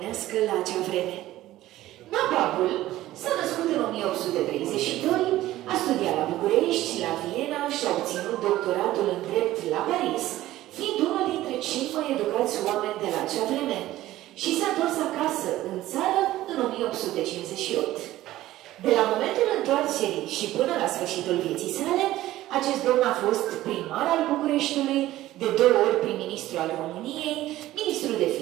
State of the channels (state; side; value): quieter; left; 15.3 dB